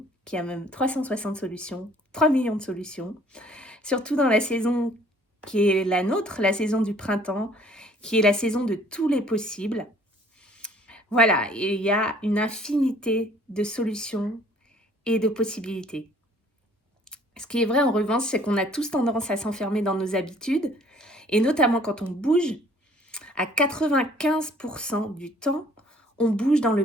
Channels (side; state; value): both; normal; correlation 0.57